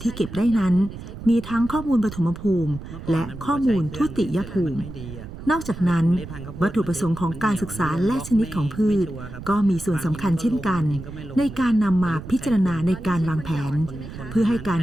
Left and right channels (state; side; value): noise; right; rumble, 12 dB below the sound